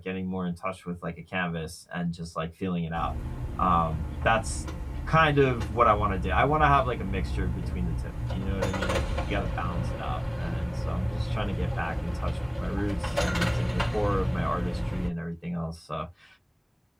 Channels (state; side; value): identical; both; correlation 1.00